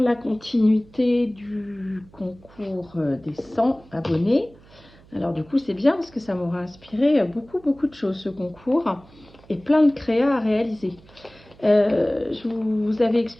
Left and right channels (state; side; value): noise; right; hum, 25 dB below the sound